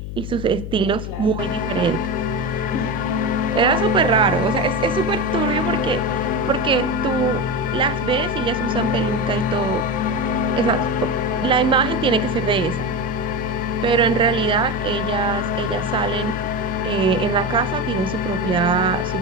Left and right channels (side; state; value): left; noise; hum, 8 dB below the sound